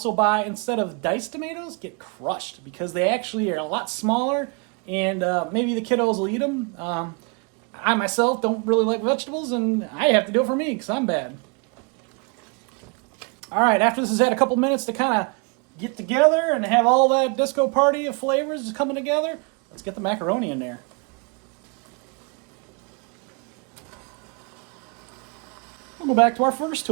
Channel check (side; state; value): left; quieter; 34.4 dB